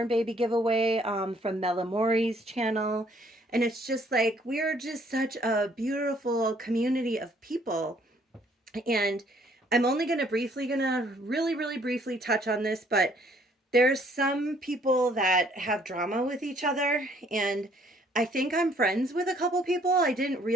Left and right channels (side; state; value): both; normal; correlation 0.63